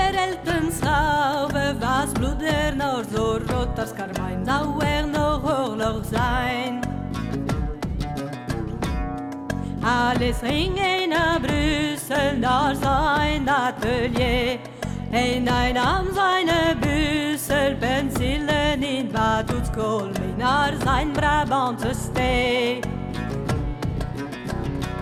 was bloed er nog zo rood als karmijn, zou er nog oorlog zijn. Alles ging heen naar Brussel, naar zijn atelier. En hij nam zijn bussel, penselen in Batoetskool mee naar zijn Brabantse stee.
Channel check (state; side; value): identical; both; correlation 1.00